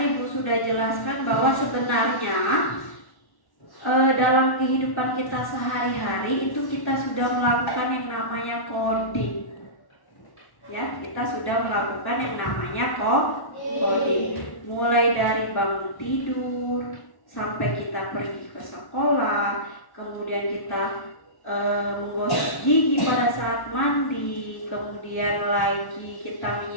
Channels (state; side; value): late; right; 1.1 ms